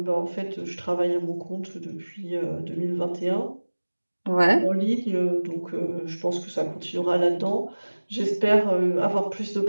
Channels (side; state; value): both; inverted; correlation -1.00